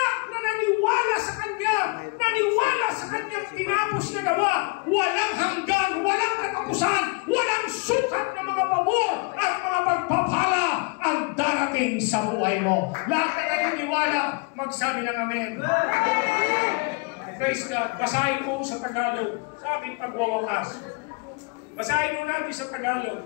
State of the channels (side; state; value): right; quieter; 30.5 dB